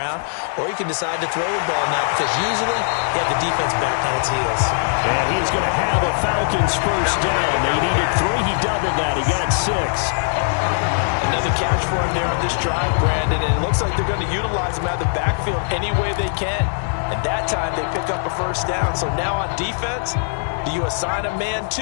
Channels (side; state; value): right; silent; digital silence